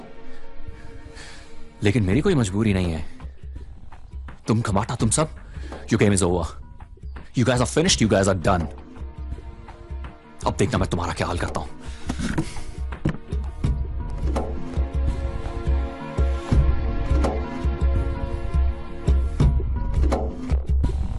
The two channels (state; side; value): identical; both; correlation 1.00